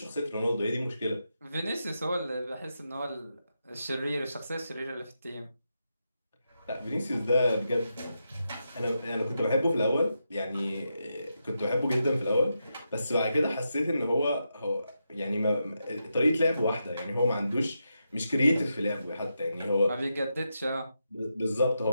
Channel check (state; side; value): inverted; both; correlation -0.86